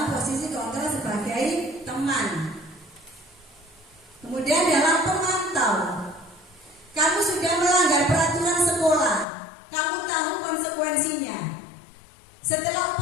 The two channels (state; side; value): drops out; right; at 9.2 s